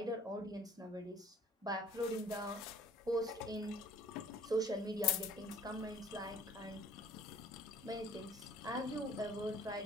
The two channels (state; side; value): normal; both; correlation 0.52